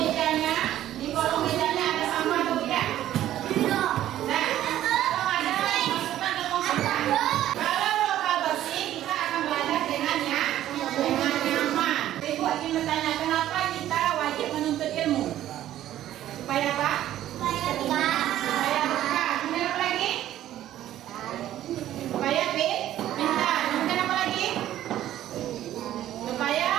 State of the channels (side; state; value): left; quieter; 12.8 dB